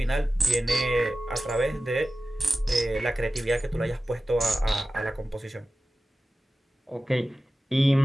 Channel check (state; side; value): normal; both; correlation 0.95